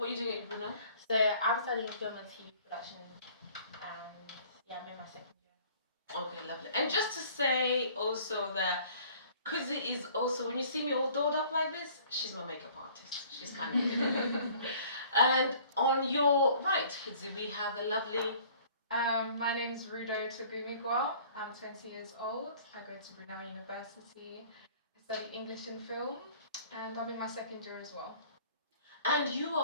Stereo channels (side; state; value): both; inverted; correlation -0.53